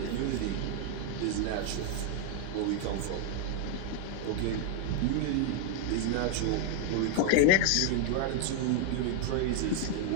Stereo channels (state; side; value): different; both; correlation 0.00